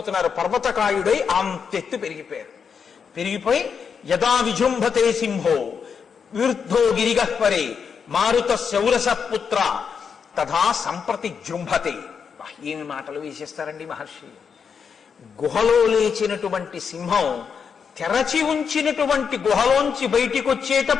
పర్వతకాయుడై అంతెత్తు పెరిగిపోయి యదా విజృంభతే సింహో విరుద్ధో గిరిగహ్వరే మారుత శౌరస పుత్ర తథా సంప్రతి జృంభతే. ఏమి మాటలు వేసేస్తారండి మహర్షి. గుహలో లేచినటువంటి సింహం తెరచి ఉంచినటువంటి గుహలోంచి బయటికి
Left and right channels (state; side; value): quieter; right; 6.5 dB